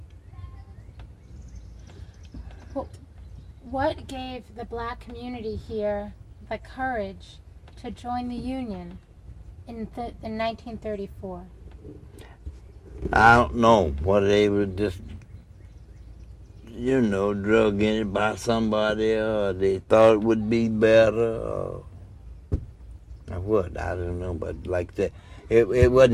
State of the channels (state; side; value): identical; both; correlation 1.00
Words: What gave the black community here the courage to join the union in 1934? I don't know what they were just, drug in it by somebody, or they thought it would be better, or what, I don't know, but like that, there